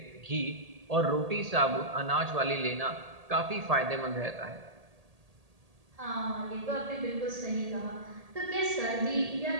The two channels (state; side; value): late; left; 1.8 ms